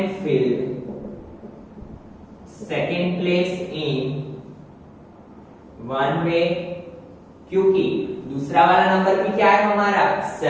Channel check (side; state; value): both; identical; correlation 1.00